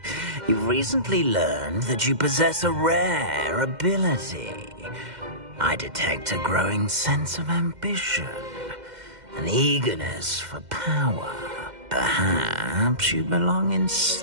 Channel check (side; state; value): left; late; 2.1 ms